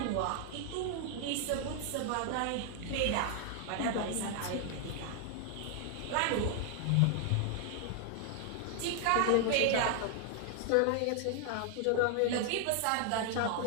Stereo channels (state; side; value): different; both; correlation 0.00